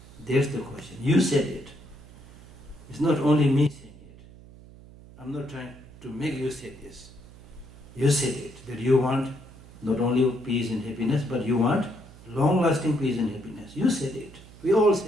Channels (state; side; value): noise; right; hum, 20 dB below the sound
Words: There's the question. You said it. It's not only me saying it. I'm not trying to make you say this. You said it, that you want not only peace and happiness, but you want long-lasting peace and happiness. You said it. We all